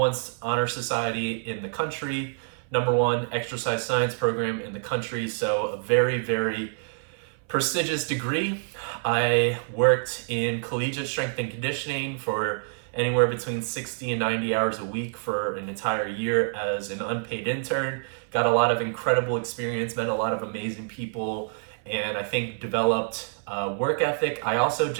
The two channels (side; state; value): left; silent; 60 dB below the other